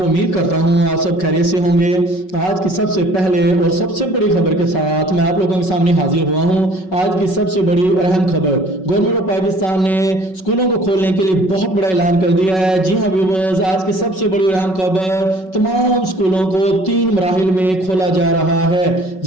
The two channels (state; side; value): late; right; 5.4 ms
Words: उम्मीद करता हूं आप सब खैरियत से होंगे। आज की सबसे पहले और सबसे बड़ी खबर के साथ मैं आप लोगों के सामने हाजिर हुआ हूं। आज की सबसे बड़ी और अहम खबर, गवर्नमेंट ऑफ पाकिस्तान ने स्कूलों को खोलने के लिए बहुत बड़ा ऐलान कर दिया है। जी हां व्यूअर्स, आज की सबसे बड़ी और अहम खबर, तमाम स्कूलों को 3 मराहिल में खोला जा रहा है।